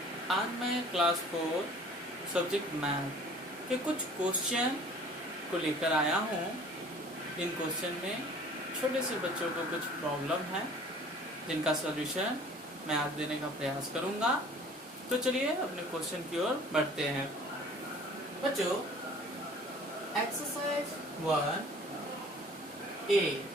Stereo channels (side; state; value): both; normal; correlation 0.50